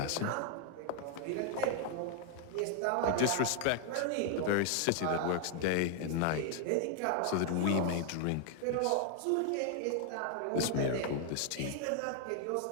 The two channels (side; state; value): both; different; correlation 0.00